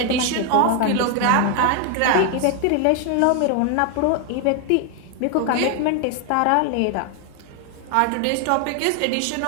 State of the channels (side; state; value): both; different; correlation 0.01